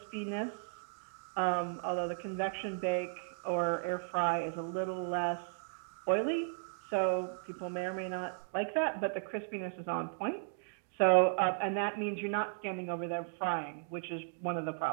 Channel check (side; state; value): left; silent; digital silence